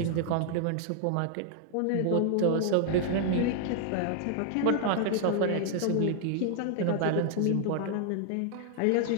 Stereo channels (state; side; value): different; both; correlation 0.00